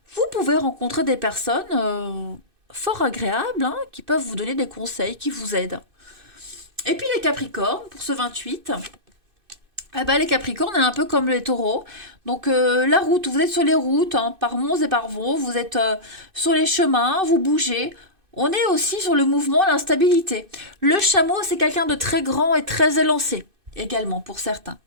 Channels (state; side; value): late; left; 2.6 ms